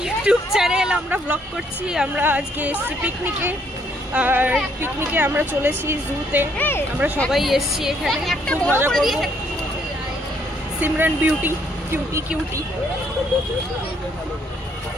YouTube channel. আমরা blog করছি। আমরা আজকে এসেছি পিকনিকে, আর পিকনিকে আমরা চলেছি জুতে। আমরা সবাই এসেছি এখানে, খুব মজা করবো। সিমরান বিউটি কিউটি কিউটি,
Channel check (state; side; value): normal; both; correlation 0.68